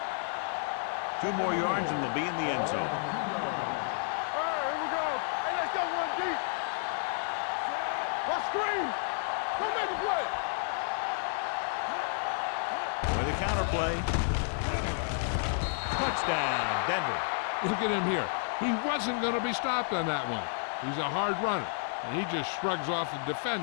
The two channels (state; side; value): silent; right; digital silence